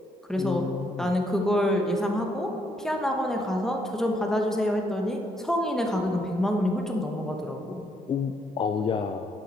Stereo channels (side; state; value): both; normal; correlation 0.73